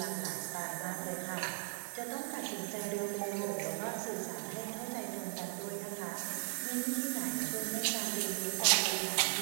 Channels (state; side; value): silent; left; digital silence